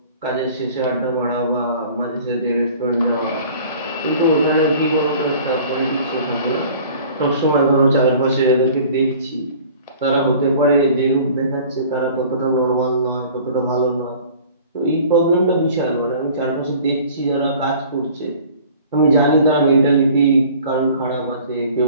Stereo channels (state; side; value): inverted; both; correlation -0.48